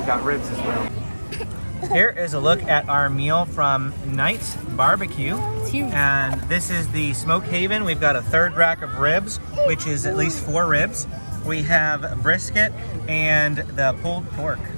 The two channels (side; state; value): both; inverted; correlation -1.00